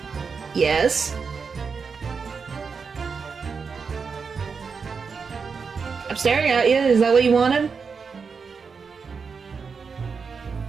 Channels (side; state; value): left; quieter; 5.4 dB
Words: Yes? I'm staring at you. Is that what you wanted?